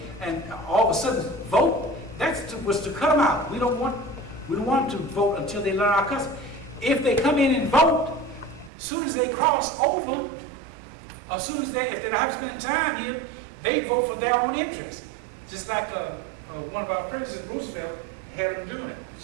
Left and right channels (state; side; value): drops out; left; at 8.7 s